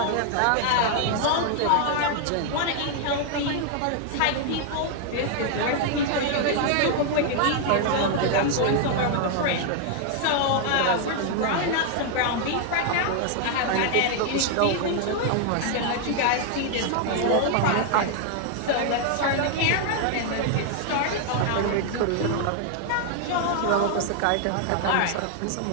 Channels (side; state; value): both; different; correlation 0.00